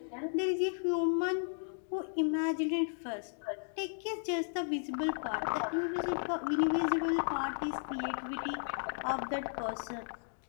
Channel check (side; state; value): right; silent; digital silence